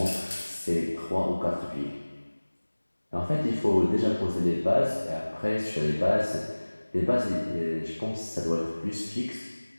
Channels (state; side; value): inverted; both; correlation -1.00